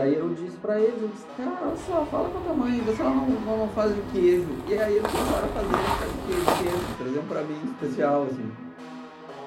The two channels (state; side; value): identical; both; correlation 1.00